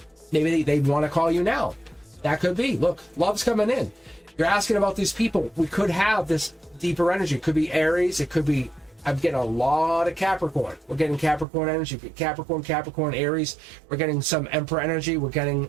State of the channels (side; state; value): left; drops out; at 11.5 s